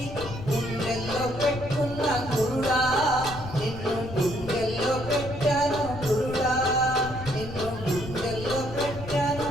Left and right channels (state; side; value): noise; left; rumble, 11 dB below the sound